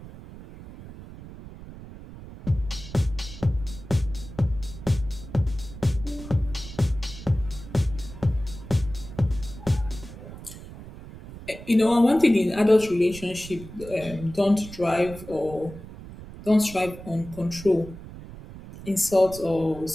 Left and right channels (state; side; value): noise; right; rumble, 14 dB below the sound